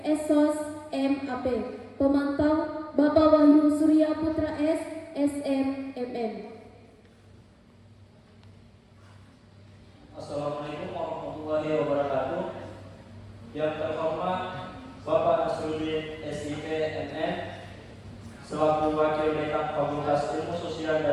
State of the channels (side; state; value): both; identical; correlation 1.00